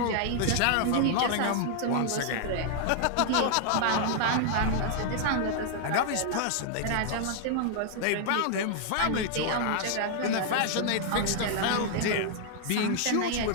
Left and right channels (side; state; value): both; different; correlation 0.00